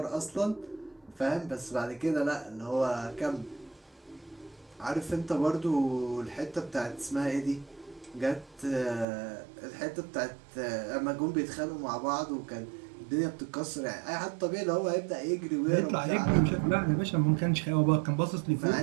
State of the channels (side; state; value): left; drops out; at 9.1 s